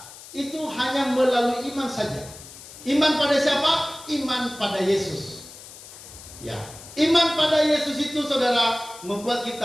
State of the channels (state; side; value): noise; left; hiss, 17 dB below the sound